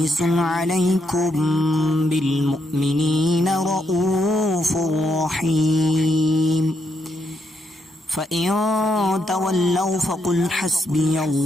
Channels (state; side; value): normal; both; correlation 0.78